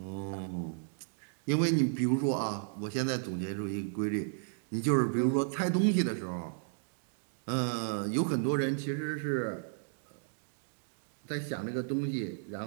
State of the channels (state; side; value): silent; left; digital silence